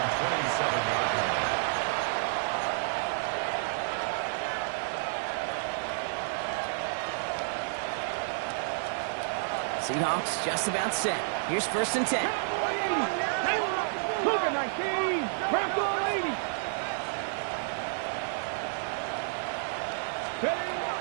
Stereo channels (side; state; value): left; silent; digital silence